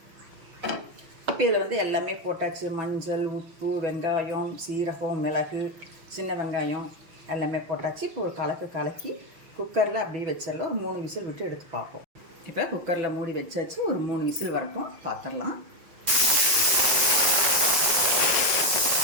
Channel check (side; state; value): left; late; 6.2 ms